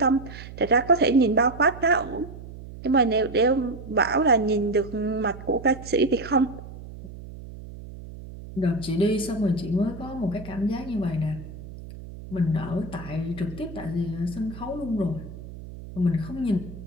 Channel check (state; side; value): noise; right; hum, 14 dB below the sound